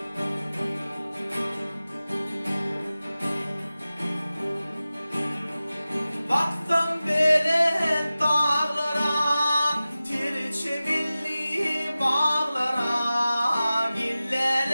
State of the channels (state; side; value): inverted; both; correlation -0.96